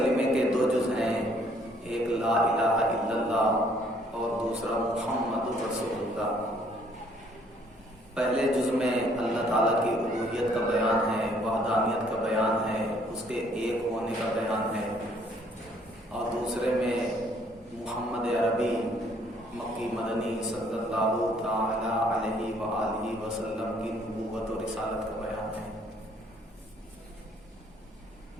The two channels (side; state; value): both; normal; correlation 0.63